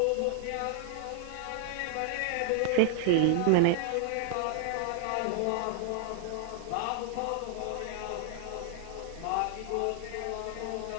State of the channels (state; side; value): different; both; correlation -0.01